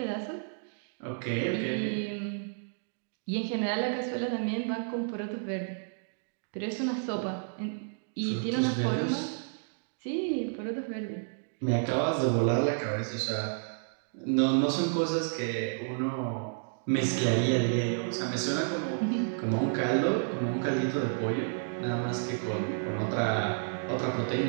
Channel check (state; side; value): silent; left; digital silence